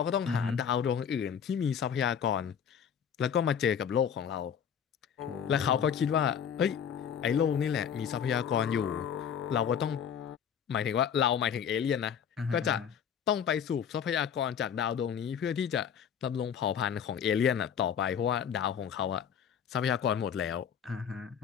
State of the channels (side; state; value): right; quieter; 8.0 dB